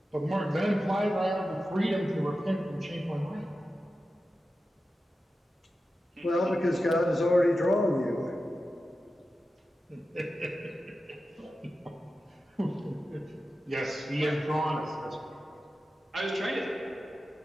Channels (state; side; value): normal; both; correlation 0.92